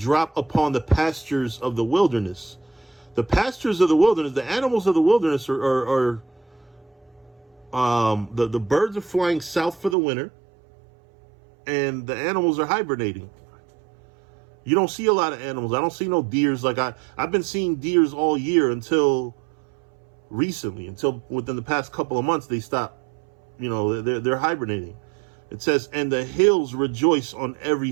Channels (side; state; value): left; drops out; at 10.0 s